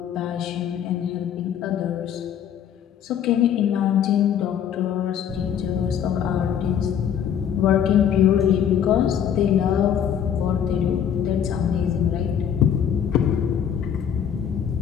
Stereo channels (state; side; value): quieter; right; 8.8 dB